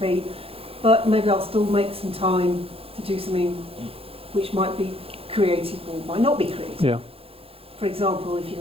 but maybe I'll still make some time to do something which might be creative or might not be creative. Yeah. For example, if you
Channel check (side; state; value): left; late; 0.27 ms